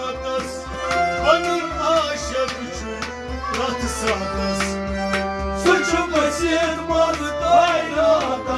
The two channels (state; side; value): identical; both; correlation 1.00